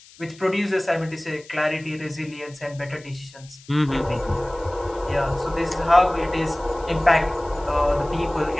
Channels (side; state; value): left; noise; hiss, 23 dB below the sound